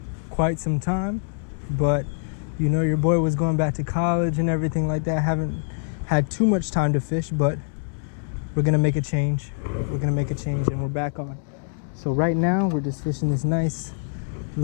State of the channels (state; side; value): silent; right; 62 dB below the other